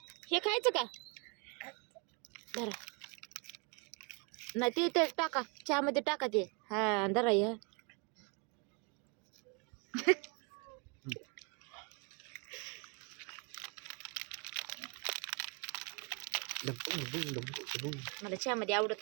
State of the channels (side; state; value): left; quieter; 32.4 dB